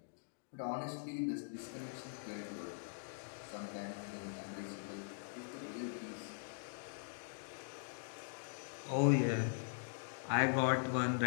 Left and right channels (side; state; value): right; silent; digital silence